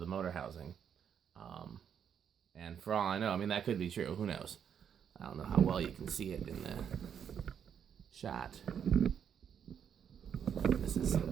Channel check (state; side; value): quieter; left; 8.1 dB